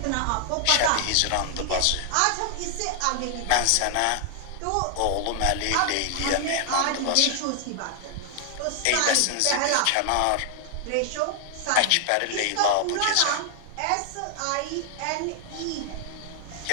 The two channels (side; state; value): both; different; correlation 0.00